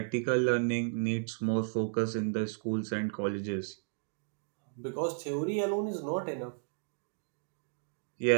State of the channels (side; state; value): left; silent; digital silence